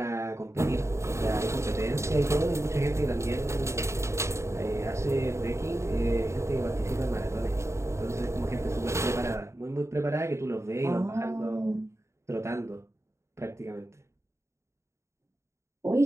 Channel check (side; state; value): left; late; 0.14 ms